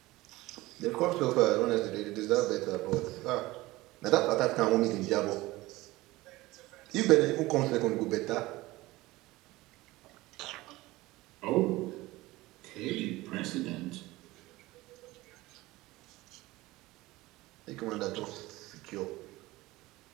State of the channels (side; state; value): left; quieter; 19.3 dB